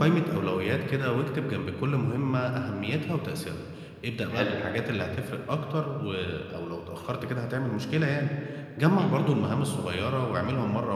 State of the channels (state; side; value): identical; both; correlation 1.00